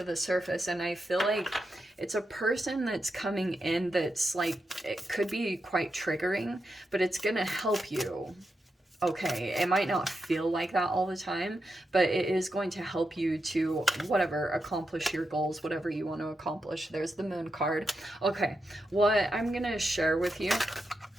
the surface. And I feel like it's a person that's coming in that's like, it could be quite triggering, but it's gonna help you. Okay, it might not feel like that all the time, but it is going to help you to whatever, accomplish your goals, whatever you want to accomplish. There's the moon card. Okay, what I'm gonna share with you,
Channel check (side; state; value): both; normal; correlation 0.87